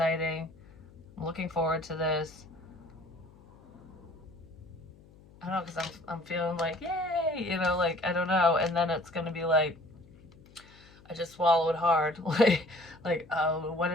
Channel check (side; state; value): left; noise; hum, 24 dB below the sound